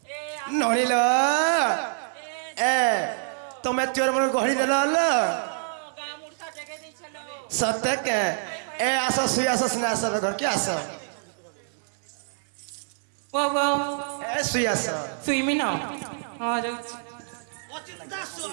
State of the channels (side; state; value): left; silent; digital silence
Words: নড়িল এ তুমি চোর মনে গহড়ি দেল সত্যি কে এ আসো শুই আসো সিনে আসো ঘর কি আসো वो वो এ শুই আসো सुई में ना हाँ जो অচিন্তা